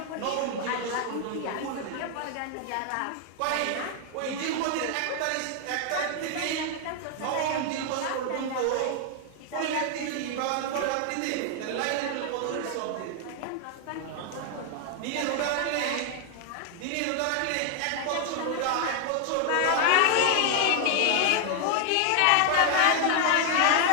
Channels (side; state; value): both; different; correlation 0.00